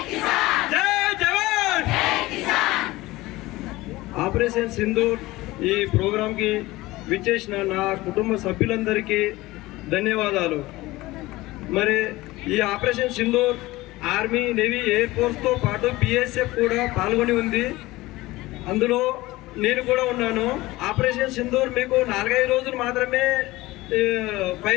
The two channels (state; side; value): quieter; right; 19.2 dB